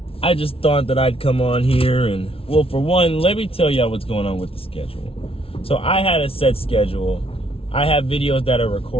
I just thought that I'd come on here and, well, for one, let me tell y'all what's going on with the schedule. So I had a set schedule. I have videos that are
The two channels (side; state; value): right; late; 0.27 ms